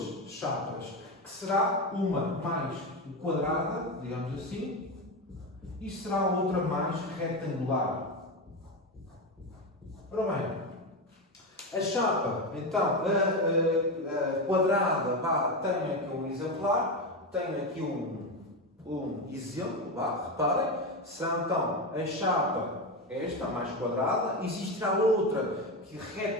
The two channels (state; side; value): normal; both; correlation 0.15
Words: chapas, que será uma mais quadrada, digamos assim, e será a outra mais retangular. Ora bem, a chapa, então, a quadrada, tem aqui um exemplar, tem aqui um exemplo, reparem, será então a chapa esta, mais quadrada, existirá outra